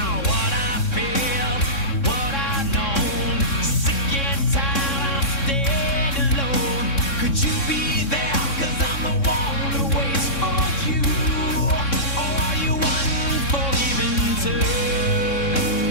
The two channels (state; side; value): late; right; 3.6 ms